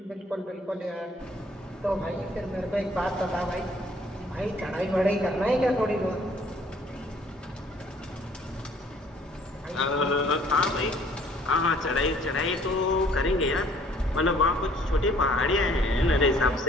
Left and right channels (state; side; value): normal; both; correlation 0.58